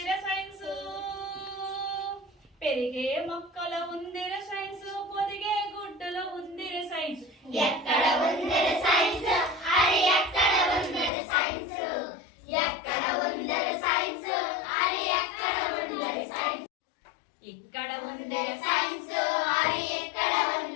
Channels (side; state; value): right; drops out; at 11.1 s